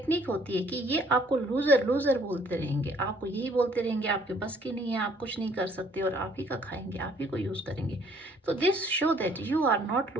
होती है कि ये आपको लूजर लूजर बोलते रहेंगे, आपको यही बोलते रहेंगे आपके बस की नहीं है, आप कुछ नहीं कर सकते, और आप ही का खाएंगे, आप ही को यूज करेंगे। तो this show that you are not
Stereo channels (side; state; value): both; normal; correlation 0.61